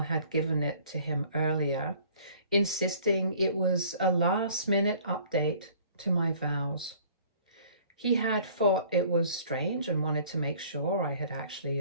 had given it to him earlier, insisting it was a last-minute update to my vows. He had thought it was strange and wanted to make sure I had actually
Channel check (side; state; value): both; inverted; correlation -0.53